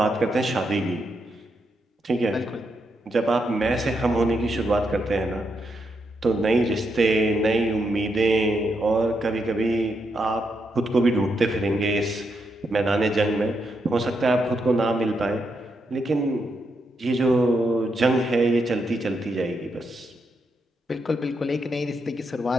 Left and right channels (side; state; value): both; normal; correlation 0.81